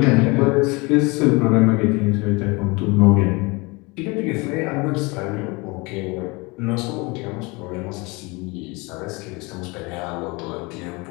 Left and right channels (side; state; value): right; quieter; 26.3 dB